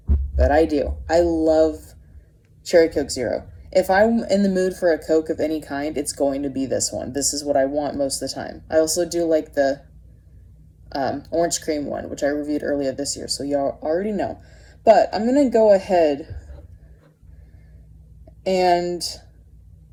But I do. I love Cherry Coke Zero. If I'm in the mood for a Coke of any kind, it's going to be this one. This is what I want most of the time. I also do like the orange cream one, which I reviewed earlier this year, so y'all already know. But I'm going to go ahead and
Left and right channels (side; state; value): both; identical; correlation 1.00